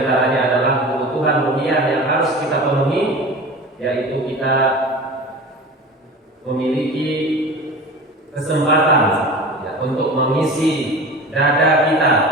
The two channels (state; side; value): normal; both; correlation 0.35